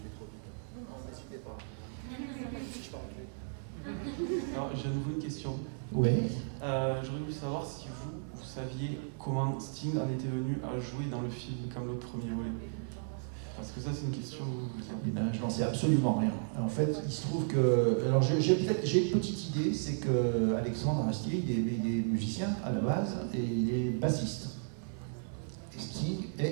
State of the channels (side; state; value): left; silent; 55 dB below the other